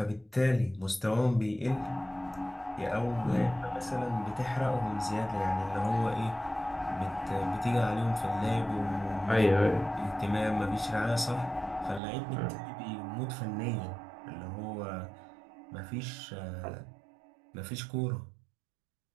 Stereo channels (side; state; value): left; drops out; at 12.0 s